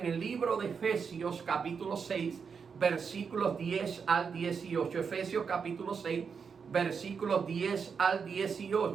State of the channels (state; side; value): quieter; left; 6.0 dB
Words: el libro de Efesios capítulo 6, versículos 10 al 18. Efesios capítulo 6, versículos 10 al